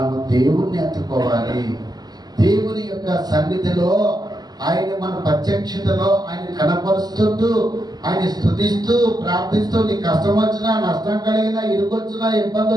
దేవుణ్ణి హత్తుకోవాలి. దేవుని యొక్క సన్నిధిలో ఆయన మన ప్రత్యక్షతలో ఆయన కనపరుస్తుంటూ, ఆయన స్తుతిస్తూ, ప్రార్థిస్తూ, నీ కష్టం వచ్చినా, నష్టం కలిగినా, ఇరుకు వచ్చినా, ఇబ్బంది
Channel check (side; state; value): left; late; 0.20 ms